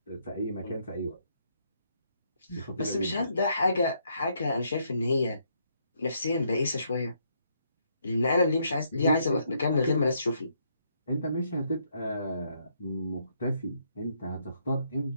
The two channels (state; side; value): inverted; both; correlation -0.73